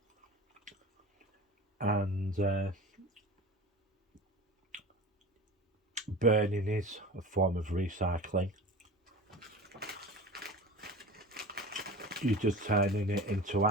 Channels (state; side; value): normal; both; correlation 0.35